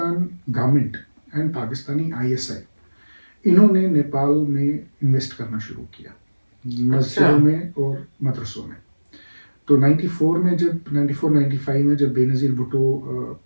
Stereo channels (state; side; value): inverted; both; correlation -1.00